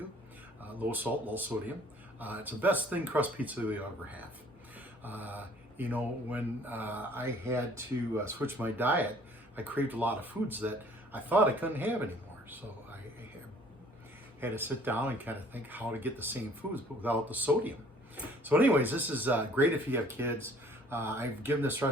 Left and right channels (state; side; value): normal; both; correlation 0.56